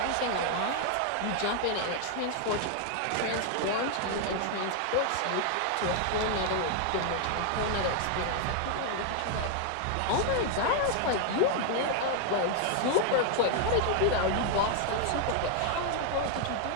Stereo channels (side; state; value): both; different; correlation 0.00